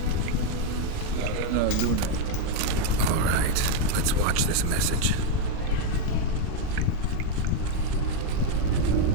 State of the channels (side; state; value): both; different; correlation 0.01